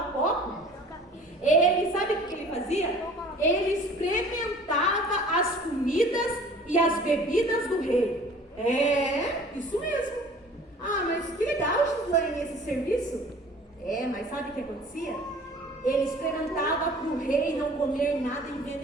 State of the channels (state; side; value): normal; both; correlation 0.48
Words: copo? Ele, sabe o que ele fazia? Ele experimentava as comidas e as bebidas do rei. É, isso mesmo. Ah, mas que legal, Gislaine, esse serviço. É, mas sabe o que acontecia? Ele experimentava para o rei não comer nada